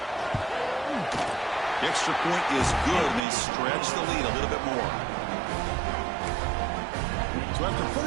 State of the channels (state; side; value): drops out; left; at 3.2 s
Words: The extra point is good, and they stretch the lead a little bit more. So after